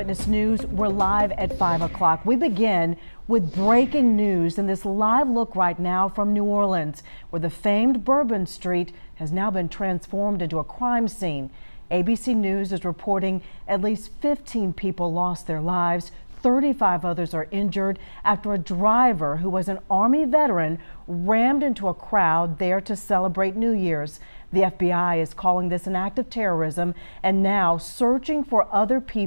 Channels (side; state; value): both; inverted; correlation -1.00